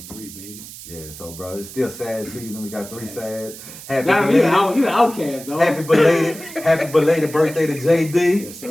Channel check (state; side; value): noise; right; hiss, 15 dB below the sound